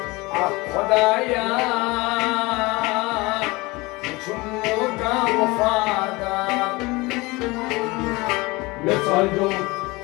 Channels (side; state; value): right; quieter; 23.2 dB